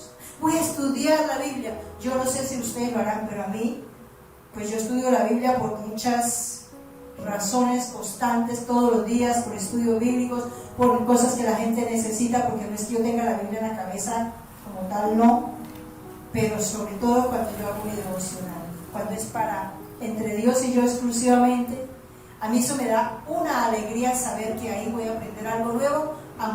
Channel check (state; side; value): identical; both; correlation 1.00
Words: voy a estudiar la Biblia. Yo no sé si ustedes lo harán, pero a mí, pues yo estudio la Biblia por muchas razones constantes todos los días, por estudios bíblicos, por cosas que la gente necesita, porque no es que yo tenga la Biblia en la cabeza como tal, no, pero sobre todo cuando yo hago mi devocional, cuando es para entre Dios y yo exclusivamente. A mí eso me da una alegría saber que ahí voy a aprender algo nuevo,